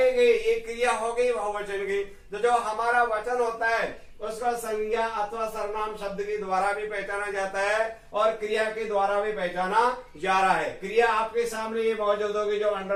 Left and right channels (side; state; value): both; identical; correlation 1.00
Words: गए ये क्रिया हो गई बहुवचन की। तो जो हमारा वचन होता है उसका संज्ञा अथवा सर्वनाम शब्द के द्वारा भी पहचाना जाता है और क्रिया के द्वारा भी पहचाना जा रहा है। क्रिया आपके सामने ये मौजूद होगी, जो